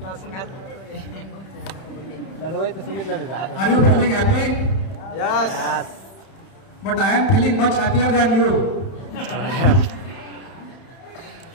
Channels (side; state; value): right; late; 31 ms